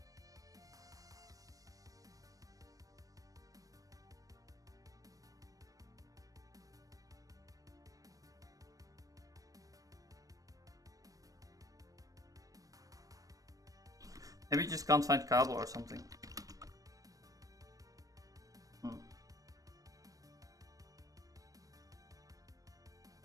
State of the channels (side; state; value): left; late; 0.17 ms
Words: Maybe you just can't find cable or something.